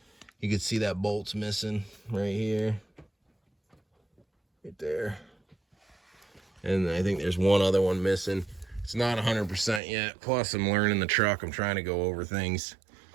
You can see that bolt's missing right here. Right there. And I think there's one other one missing. It's not 100% yet. Plus, I'm learning the truck. I'm trying to go over things,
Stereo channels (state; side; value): drops out; left; at 9.8 s